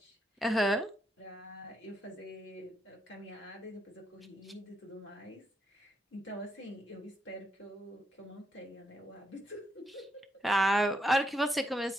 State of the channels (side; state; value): both; normal; correlation 0.79